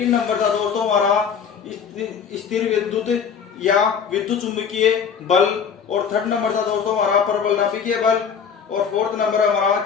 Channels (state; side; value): quieter; right; 6.8 dB